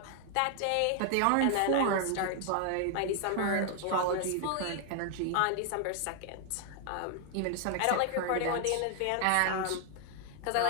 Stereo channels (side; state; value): both; different; correlation 0.00